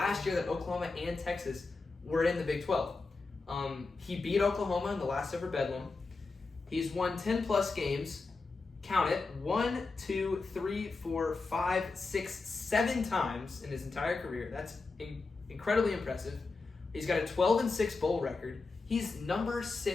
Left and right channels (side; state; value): right; quieter; 3.9 dB